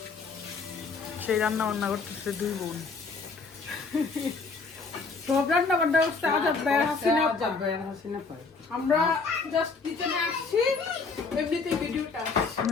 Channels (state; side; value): quieter; right; 4.4 dB